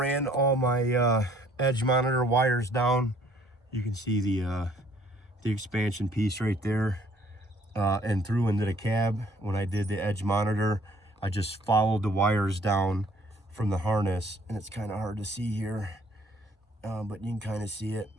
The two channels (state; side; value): normal; both; correlation 0.59